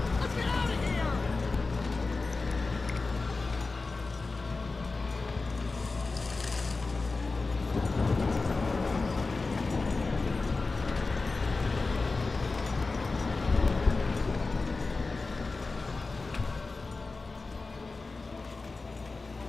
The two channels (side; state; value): right; quieter; 3.8 dB